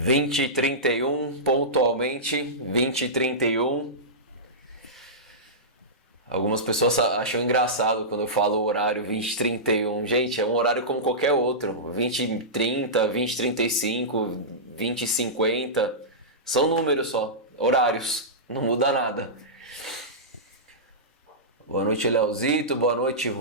pontualmente. 20h31. Algumas pessoas acham engraçado quando eu falo o horário 20h31. Gente, é um horário como qualquer outro. 20h30, 20h35, 20h50. São números só, horários. Não muda nada. Boa noite, Leozito. Boa noite,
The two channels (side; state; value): both; normal; correlation -0.16